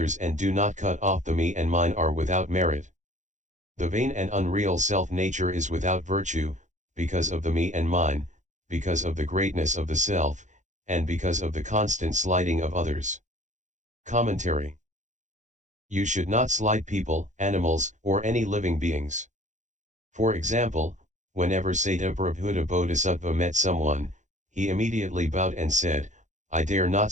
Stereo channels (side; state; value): left; late; 0.35 ms